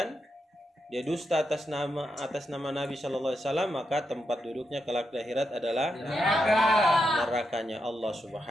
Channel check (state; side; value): normal; both; correlation 0.84